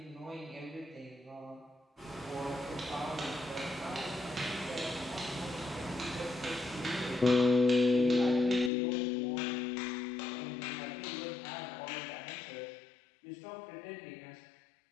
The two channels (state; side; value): drops out; right; at 8.7 s